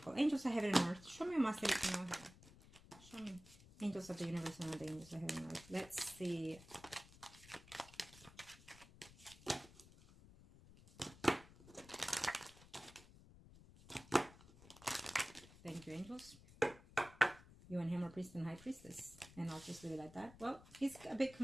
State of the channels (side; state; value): left; noise; rumble, 20 dB below the sound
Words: Angels of heaven and earth. Show me my city to know here. Show me. Angels of the universe and the angels of heaven and earth. Let's see. angels. You and him are priest and high priestess. And I'll just leave it like that. Well, he's a bit